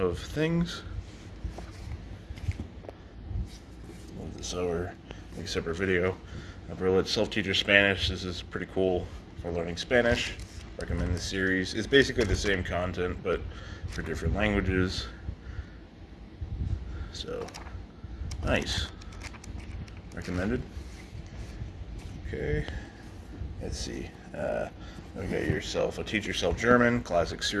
of Things. Move this over, make a separate video. Berlitz Self-Teacher Spanish. This is pretty cool for learning Spanish. Recommend the series. It's basically the same content, but for different languages. So, nice. Recommended. Okay. Let's see. We got yourself a Teach Yourself German, classic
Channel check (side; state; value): both; identical; correlation 1.00